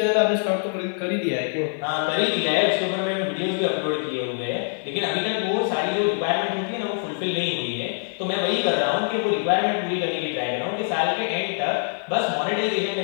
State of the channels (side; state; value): right; silent; digital silence